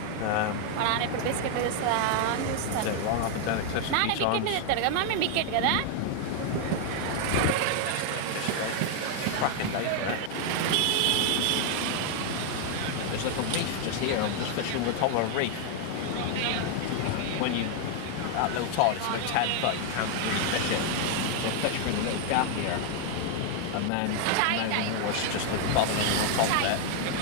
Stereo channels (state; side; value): different; both; correlation 0.00